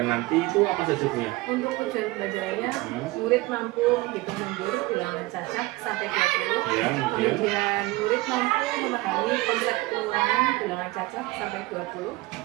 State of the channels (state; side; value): quieter; left; 20.8 dB